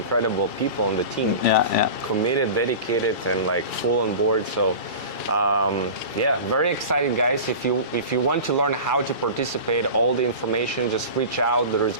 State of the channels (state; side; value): late; right; 2.3 ms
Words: people on the team. Yeah. Committed, dedicated, and like full on board. So, yeah, very excited, guys. If you want to learn how to participate, all the information, just reach out. There is